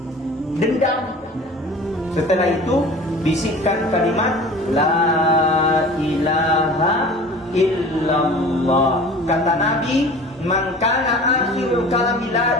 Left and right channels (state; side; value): normal; both; correlation 0.42